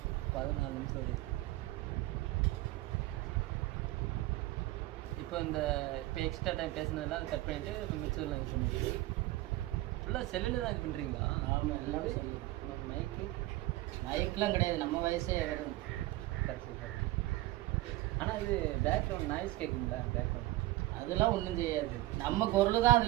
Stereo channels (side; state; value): left; quieter; 17.8 dB